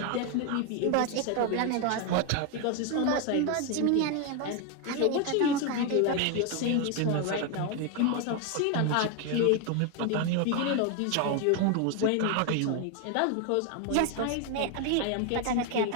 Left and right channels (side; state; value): both; different; correlation 0.01